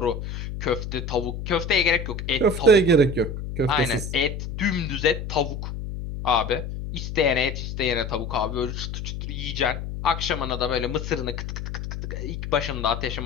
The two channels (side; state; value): left; noise; hum, 6 dB below the sound